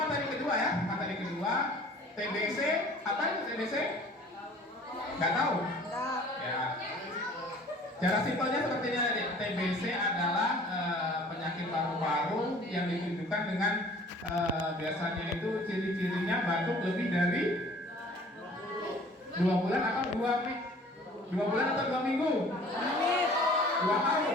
kedua ya, materi kedua TBC. Apa itu TBC? Nggak tahu? Ya. Cara simpelnya seperti ini adik. TBC adalah penyakit paru-paru yang ditunjukkan dengan biasanya itu ciri-cirinya batuk lebih dari 2 bulan atau 2 bulan atau 2 minggu? 2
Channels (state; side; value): normal; both; correlation 0.50